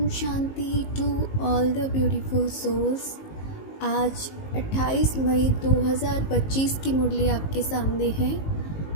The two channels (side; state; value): right; late; 19 ms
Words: ओम शांति to all the beautiful souls. आज 28 मई 2025 की मुरली आपके सामने है।